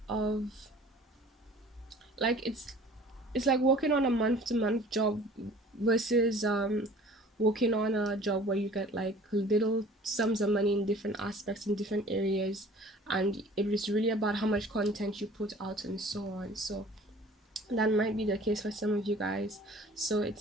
of, like, it's like working on a month to month job versus working on a job where you get like little sums of money in different aspects in different areas, and it is really about how much content you put out and so on. So that might be the case for some of you guys. So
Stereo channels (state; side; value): normal; both; correlation 0.48